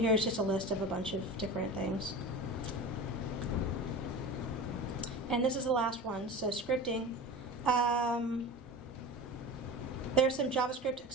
just a list of a bunch of different things. And this is the last one. So scripting. There's some JavaScript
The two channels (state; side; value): normal; both; correlation 0.32